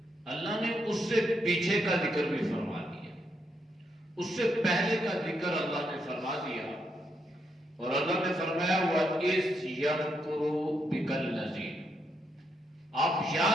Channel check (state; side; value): normal; both; correlation 0.79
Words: اللہ نے اس سے پیچھے کا ذکر بھی فرما دیا، اس سے پہلے کا ذکر اللہ نے فرما دیا، اور اللہ نے فرمایا وَإِذْ يَمْكُرُ بِكَ الَّذِينَ، آپ